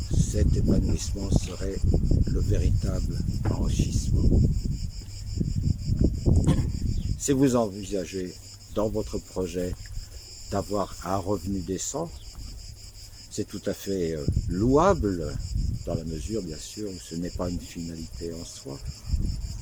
cet épanouissement serait le véritable enrichissement. Si vous envisagez dans votre projet d'avoir un revenu décent, c'est tout à fait louable, dans la mesure bien sûr où ce n'est pas une finalité en soi.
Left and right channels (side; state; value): both; identical; correlation 1.00